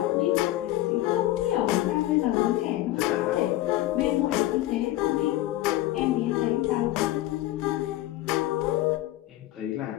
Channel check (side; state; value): right; quieter; 15.7 dB